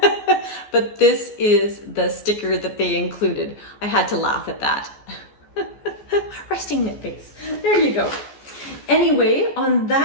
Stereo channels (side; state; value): right; late; 14 ms